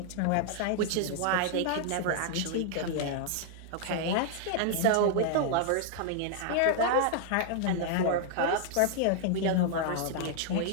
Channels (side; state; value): both; different; correlation 0.00